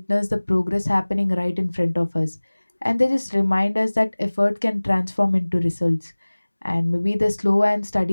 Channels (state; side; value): inverted; both; correlation -1.00